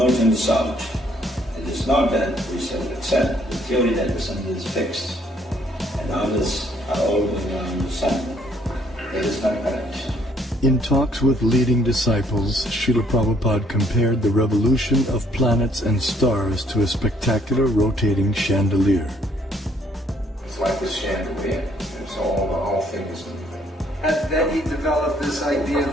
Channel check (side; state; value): both; normal; correlation 0.65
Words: and south. It is not that we shall accept the theory that the sun is fixed and others are all going around the sun. That is not correct. In talks with leading disciples, Srila Prabhupada compared the revolution of planets and stars to a spectacular rotating chandelier. It's like a chandelier. It's all, the whole thing is moving. And then he developed this idea of